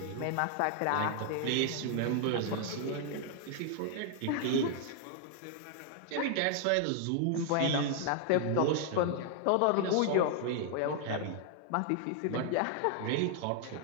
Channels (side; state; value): both; different; correlation 0.00